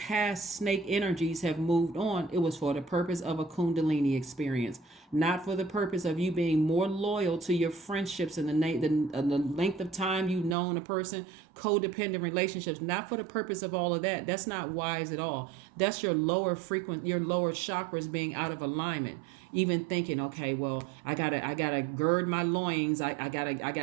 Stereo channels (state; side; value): drops out; left; at 10.6 s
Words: snake energies have moved on, it was for the purpose of a Kundalini experience, not for the purpose of you being more loyal to your friendships and the length of time you've known a person, codependent relationships, not for the purpose of all of that. That's not wise at all. That's your lower chakras being out of alignment. Even thinking, okay, well, I gotta gird my loins. I